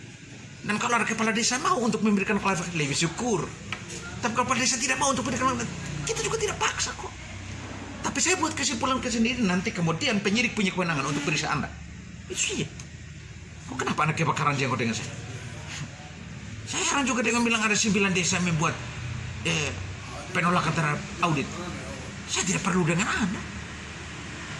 Dan kalau ada kepala desa mau untuk memberikan klarifikasi, lebih syukur. Tapi kalau kepala desa tidak mau untuk memberikan, kita juga tidak paksa kok. Tapi saya buat kesimpulan sendiri, nanti kemudian penyidik punya kewenangan untuk periksa Anda. Itu saja. Kok kenapa Anda kebakaran jenggot dengan saya? Saya heran juga dengan bilang ada 9 desa membuat penolakan terhadap audit. Saya tidak perlu dengan Anda.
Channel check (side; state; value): both; identical; correlation 1.00